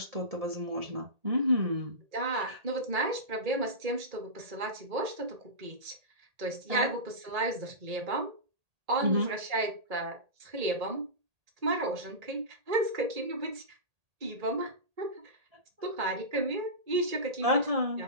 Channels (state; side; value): late; left; 1.8 ms